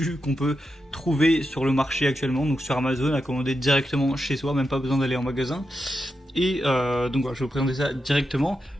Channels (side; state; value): both; normal; correlation 0.87